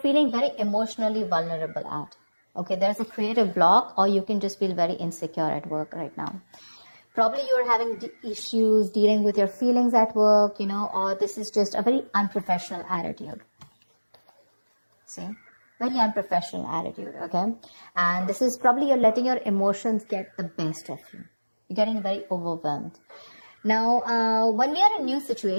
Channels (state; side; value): inverted; both; correlation -1.00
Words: very emotionally vulnerable at. Okay, there's a creative block, or you can just feel very insecure at work right now. Probably you're having issues dealing with your feelings at work, or this is just a very unprofessional attitude. See? Very unprofessional attitude, okay? And this is probably you're letting your emotions get the best of you. You're getting very overwhelmed. Now, when we are in new